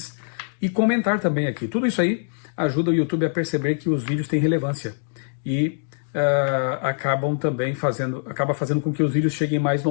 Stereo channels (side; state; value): right; silent; digital silence